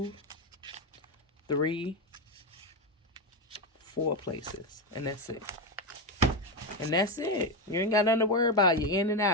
3, 4 places. And that's it. And that's it. You ain't got nothing to worry about. You're in and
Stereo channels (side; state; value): both; normal; correlation 0.11